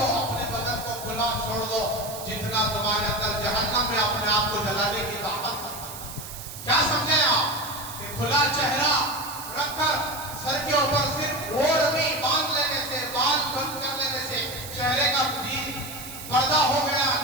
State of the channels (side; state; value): right; noise; hiss, 11 dB below the sound